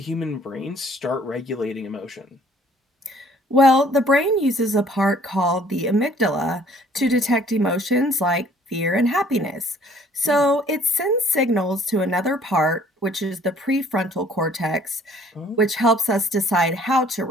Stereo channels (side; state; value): both; normal; correlation 0.57